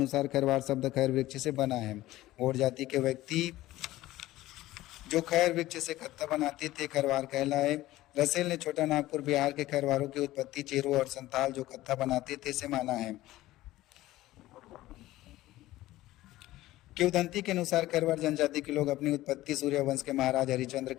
खैरवार शब्द खैर वृक्ष से बना है। गौड़ जाति के व्यक्ति जो खैर वृक्ष से कत्था बनाते थे खैरवार कहलाए। रसेल ने छोटा नागपुर बिहार के खैरवारों की उत्पत्ति चेरो और संताल जो कत्था बनाते थे से माना है। किंवदंती के अनुसार खैरवार जनजाति के लोग अपनी उत्पत्ति सूर्यवंश के महाराज हरिश्चंद्र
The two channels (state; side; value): quieter; right; 16.3 dB